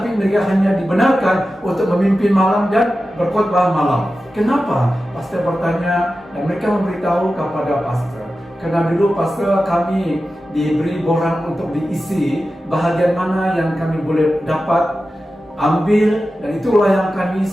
mereka hanya dibenarkan untuk memimpin malam dan berkhotbah malam. Kenapa? Pastor bertanya dan mereka memberitahu kepada pastor. Karena dulu pastor kami diberi borang untuk diisi bahagian mana yang kami boleh dapat ambil, dan itulah yang kami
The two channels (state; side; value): normal; both; correlation 0.93